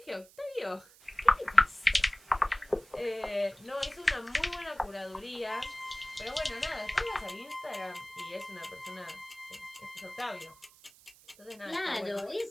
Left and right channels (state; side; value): noise; right; hiss, 24 dB below the sound